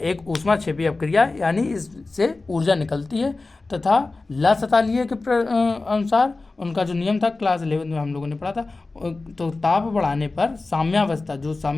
ऊष्माक्षेपी अपक्रिया, यानी इससे ऊर्जा निकलती है तथा ला सतालिए के अनुसार उनका जो नियम था क्लास 11 में हम लोगों ने पढ़ा था, तो ताप बढ़ाने पर साम्यावस्था, जो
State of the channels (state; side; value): quieter; right; 3.5 dB